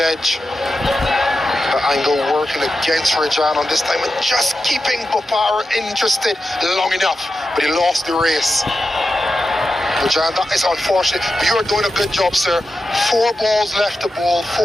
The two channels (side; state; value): both; normal; correlation 0.90